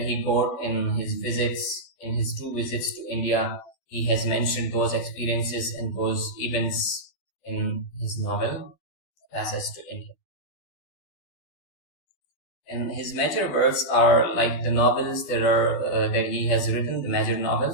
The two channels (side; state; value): right; late; 12 ms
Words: got in his his 2 visits to India, he has mentioned those experiences and those events in his novel, A Passage to India. And his major works are like the novels that he has written, the major